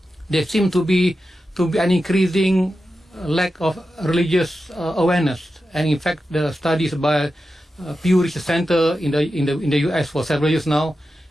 There seem to be an increasing lack of religious awareness, and in fact, the studies by Pew Research Center in the US for several years now,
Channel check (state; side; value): normal; both; correlation 0.91